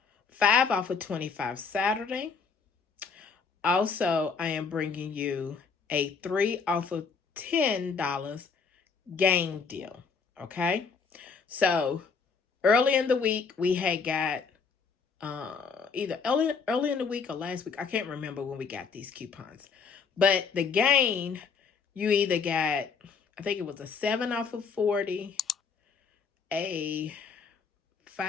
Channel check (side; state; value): right; quieter; 5.5 dB